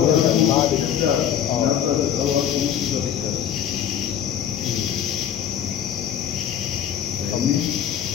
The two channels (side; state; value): right; quieter; 9.5 dB